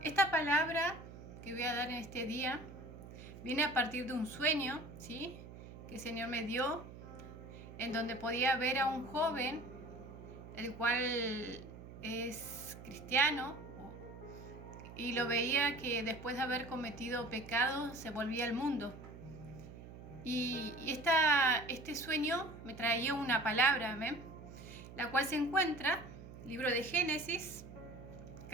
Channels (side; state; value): right; noise; hum, 14 dB below the sound